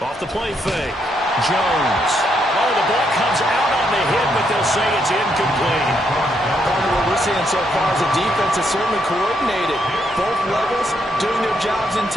Off the play fake. Jones. Oh, the ball comes out on the hit, but they'll say it's incomplete. Part of what we're seeing so far is the defense is certainly coordinated. Both levels doing their jobs in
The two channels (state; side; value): normal; both; correlation 0.76